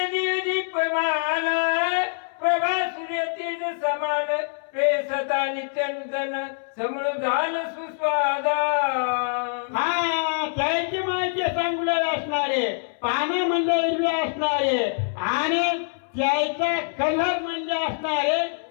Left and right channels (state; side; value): silent; right; 62 dB below the other